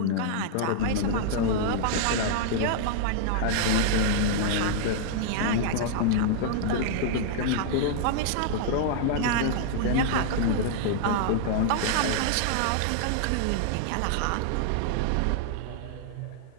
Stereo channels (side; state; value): both; different; correlation -0.01